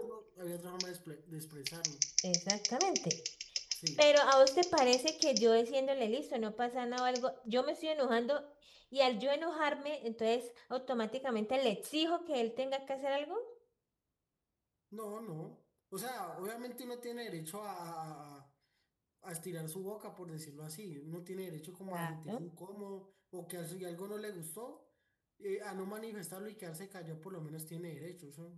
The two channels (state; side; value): identical; both; correlation 1.00